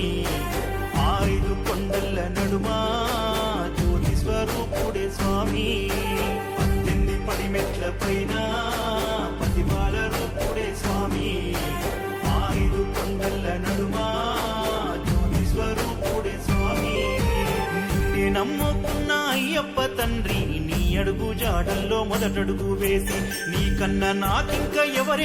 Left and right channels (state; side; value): identical; both; correlation 1.00